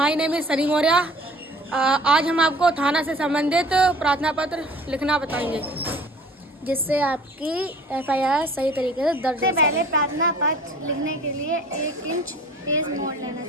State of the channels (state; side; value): normal; both; correlation 0.48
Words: name is Sunny Maurya. आज हम आपको थाना से संबंधित प्रार्थना पत्र लिखना बताएंगे, जिससे आपकी एफआईआर सही तरीके से दर्ज हो सके। पहले प्रार्थना पत्र लिखने के लिए 1 इंच पेज मोड़ लेना